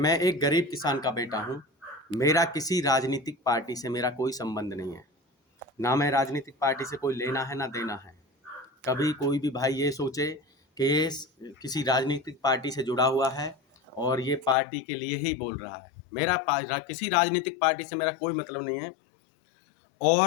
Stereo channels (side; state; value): right; drops out; at 14.6 s